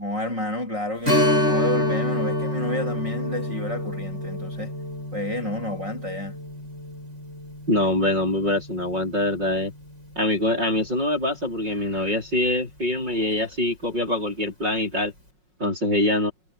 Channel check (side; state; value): left; late; 5.5 ms